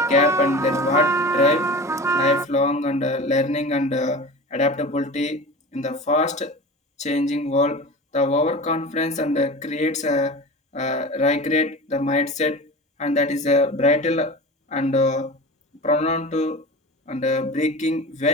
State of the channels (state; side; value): normal; both; correlation 0.33